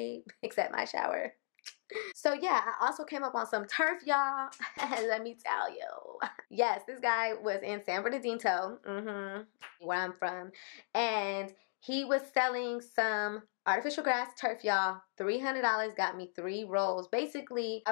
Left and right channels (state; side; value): silent; right; digital silence